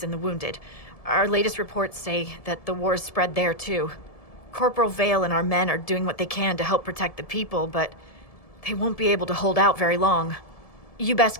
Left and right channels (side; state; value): right; late; 1.7 ms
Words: and the wounded. Our latest reports say that the war's spread there too. Corporal Vale and our men are doing what they can to help protect the people, but they won't be able to hold out very long. You best